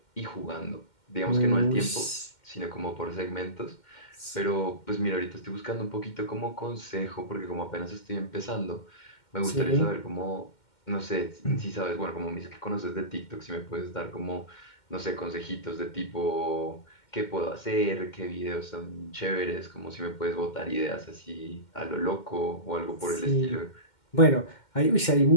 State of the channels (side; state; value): right; late; 2.1 ms